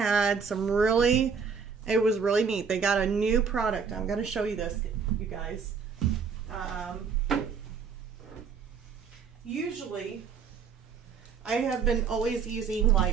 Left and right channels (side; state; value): left; quieter; 6.0 dB